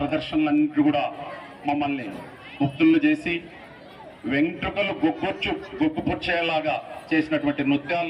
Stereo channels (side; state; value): both; identical; correlation 1.00